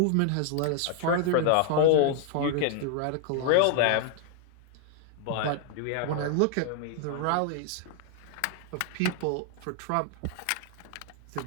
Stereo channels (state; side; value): different; both; correlation 0.00